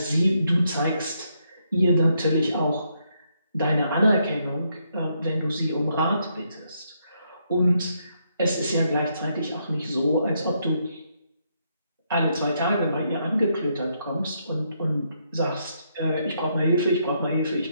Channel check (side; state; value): both; inverted; correlation -0.76